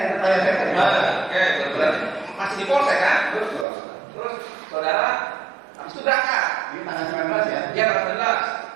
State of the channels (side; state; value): left; drops out; at 3.7 s